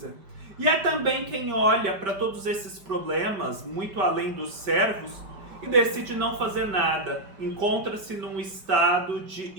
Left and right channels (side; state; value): left; late; 5.2 ms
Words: E há também quem olha para todos esses problemas, muito além dos servos, e decide não fazer nada, encontra-se num estado de